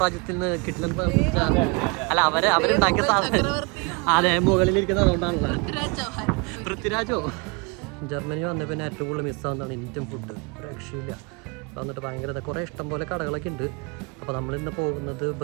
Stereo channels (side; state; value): left; quieter; 29.9 dB